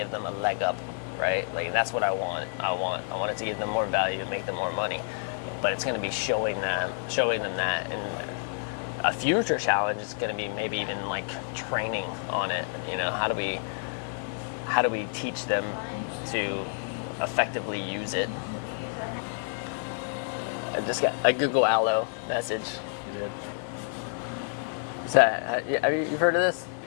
them a leg up, right? Like, that's what I want. I want it to give them more value and make them more money. But it's going to be showing them that. And a future challenge is going to be maybe even like training on it. How do we teach them to effectively use it? I just got a Google Allo message. You did. You've heard of this?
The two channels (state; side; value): silent; right; 59 dB below the other